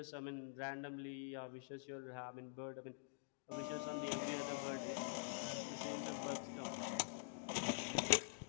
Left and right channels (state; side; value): silent; right; digital silence